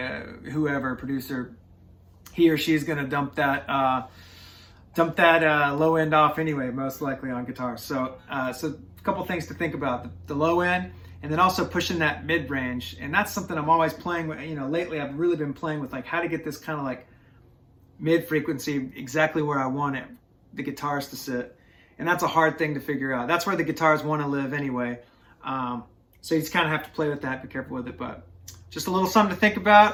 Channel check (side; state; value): both; identical; correlation 1.00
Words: whoever, producer, he or she's going to dump that low end off anyway, most likely on guitar. So so a couple things to think about: the low end, and then also pushing that mid range. And that's something I'm always playing with. You know, lately I've really been playing with, like, how to get this kind of like mid frequency exactly where I want it, the guitars to sit. And that's a hard thing to figure out. That's where the guitars want to live anyway. So you just kind of have to play with that, be careful with it. But just a little something to think